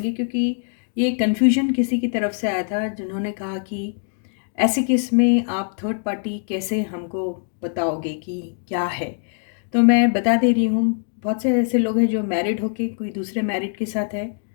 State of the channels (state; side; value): silent; right; 64 dB below the other